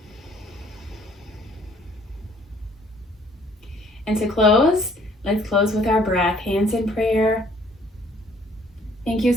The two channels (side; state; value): both; normal; correlation 0.60